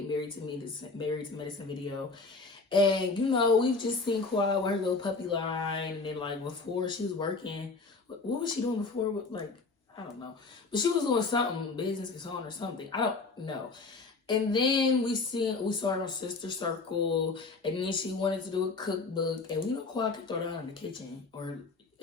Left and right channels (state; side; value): quieter; right; 3.9 dB